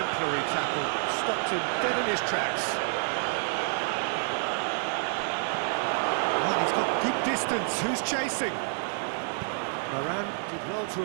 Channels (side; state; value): left; silent; 59 dB below the other